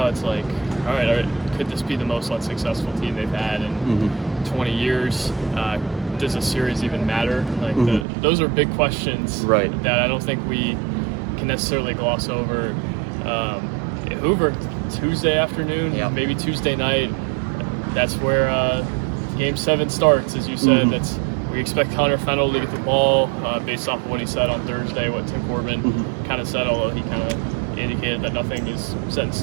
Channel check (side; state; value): left; drops out; at 8.1 s